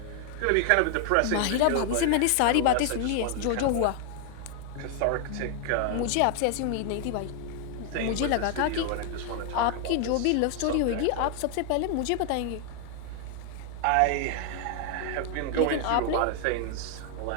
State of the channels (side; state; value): both; different; correlation 0.00